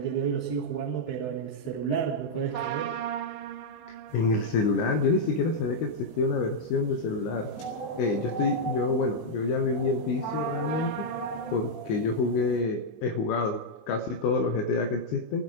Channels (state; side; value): late; right; 19 ms